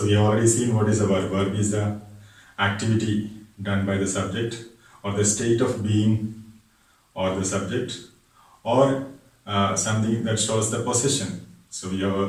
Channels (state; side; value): identical; both; correlation 1.00